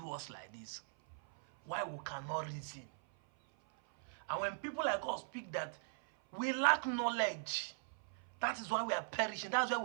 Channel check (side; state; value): left; silent; 51 dB below the other